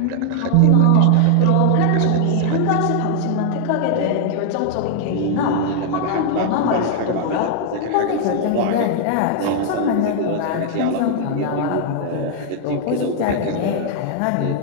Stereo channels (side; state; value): both; different; correlation 0.00